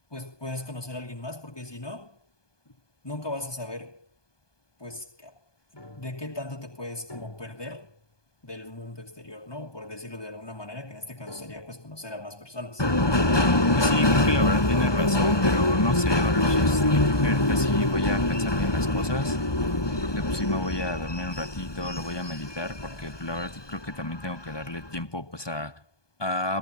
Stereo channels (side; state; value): right; late; 1.2 ms